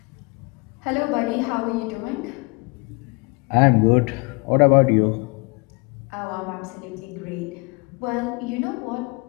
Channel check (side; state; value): right; quieter; 29.2 dB